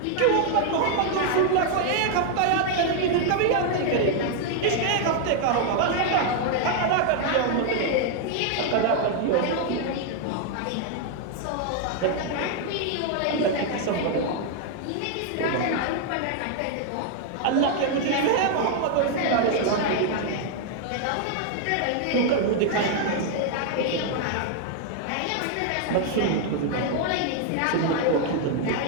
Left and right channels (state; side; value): different; both; correlation 0.00